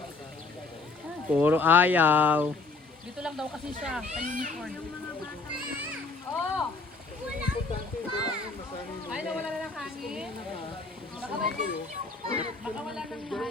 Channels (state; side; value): quieter; right; 3.9 dB